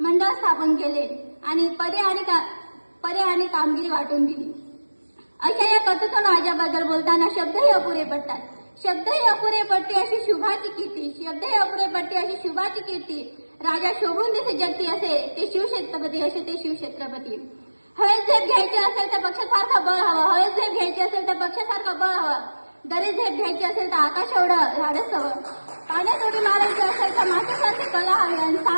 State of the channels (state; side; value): inverted; both; correlation -1.00